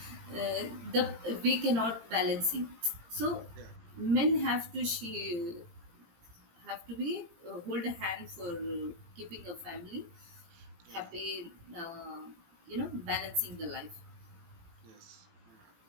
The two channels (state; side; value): late; left; 18 ms